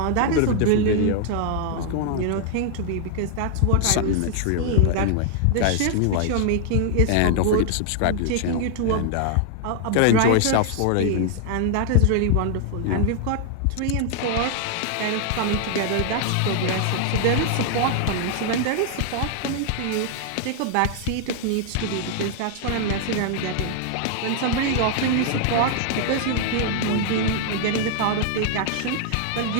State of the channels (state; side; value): different; both; correlation 0.00